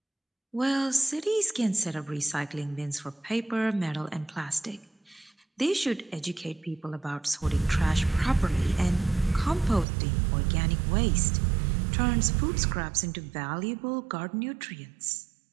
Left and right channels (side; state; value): left; drops out; at 9.9 s